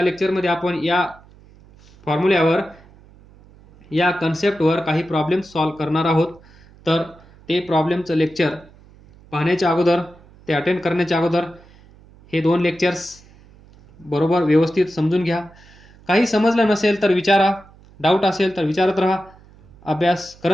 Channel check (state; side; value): noise; right; hum, 25 dB below the sound